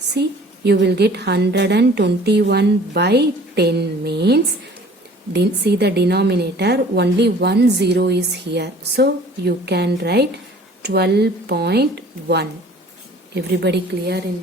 you will get 121 by 10 means, see the denominator, only 1 0 is here. So you can write 12.1. Everybody clear in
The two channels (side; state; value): both; normal; correlation 0.50